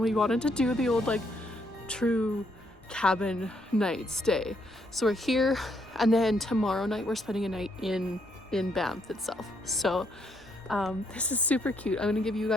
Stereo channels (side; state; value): both; normal; correlation 0.74